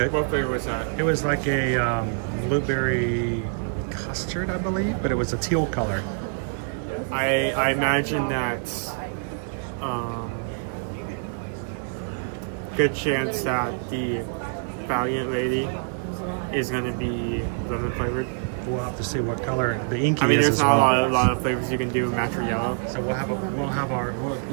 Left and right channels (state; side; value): silent; left; 61 dB below the other